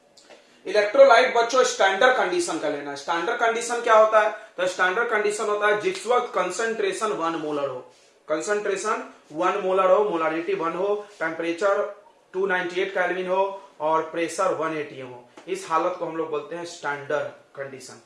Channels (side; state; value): both; identical; correlation 1.00